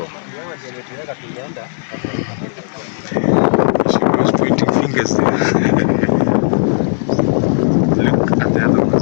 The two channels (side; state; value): right; silent; 69 dB below the other